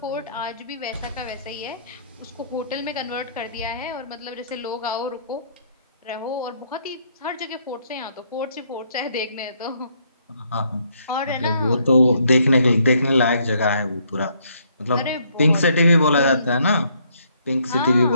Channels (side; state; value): both; inverted; correlation -0.69